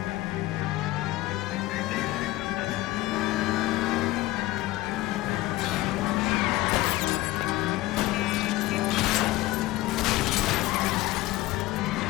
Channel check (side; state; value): right; quieter; 17.9 dB